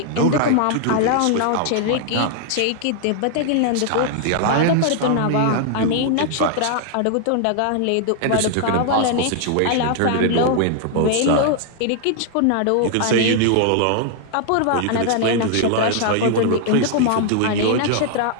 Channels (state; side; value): different; both; correlation 0.00